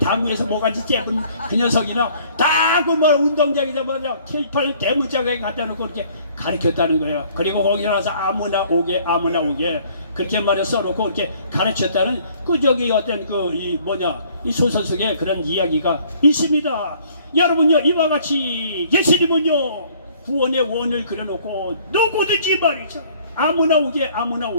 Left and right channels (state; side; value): inverted; both; correlation -0.58